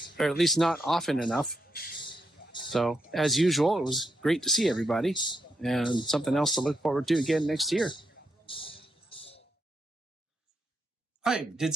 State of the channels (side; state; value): both; normal; correlation 0.81